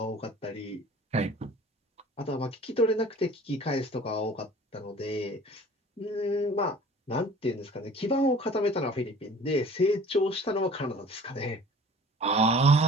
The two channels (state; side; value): normal; both; correlation 0.46